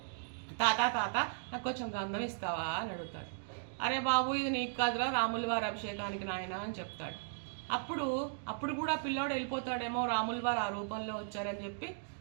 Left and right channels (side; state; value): left; silent; digital silence